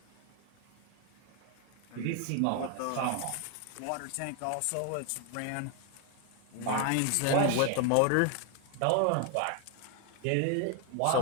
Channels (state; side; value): different; both; correlation 0.01